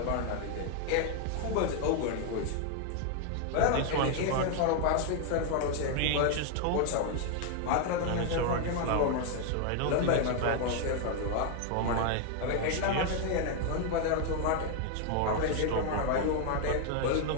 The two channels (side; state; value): both; different; correlation 0.00